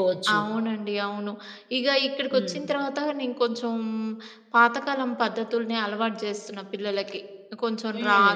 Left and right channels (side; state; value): both; identical; correlation 1.00